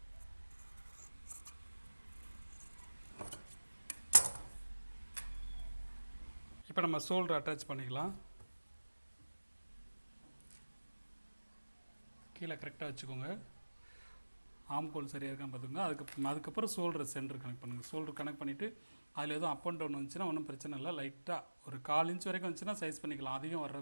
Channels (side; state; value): both; inverted; correlation -1.00